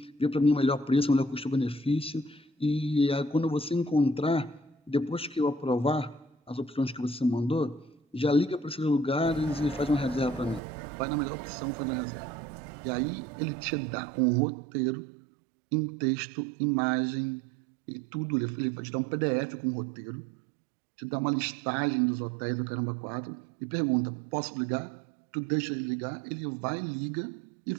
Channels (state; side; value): drops out; left; at 10.6 s